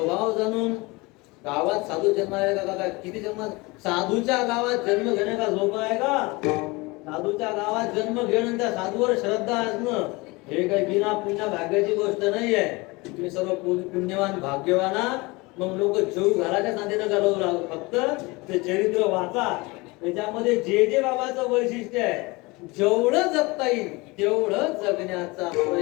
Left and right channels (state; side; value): quieter; right; 24.4 dB